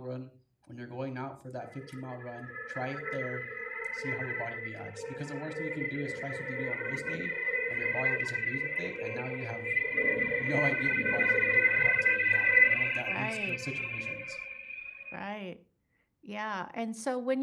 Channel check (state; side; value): identical; both; correlation 1.00